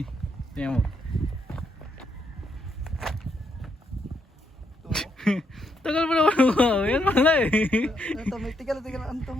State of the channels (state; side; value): normal; both; correlation 0.76